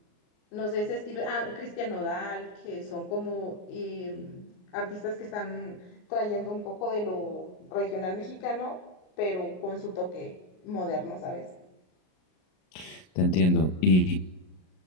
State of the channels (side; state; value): right; late; 38 ms